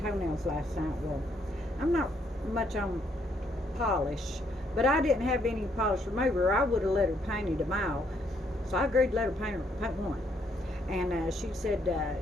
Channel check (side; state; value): both; normal; correlation 0.71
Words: last night. Well, I'm not much on polish, but I didn't have any polish remover. I would have let her paint them all. So I agreed to let her paint one. And she said,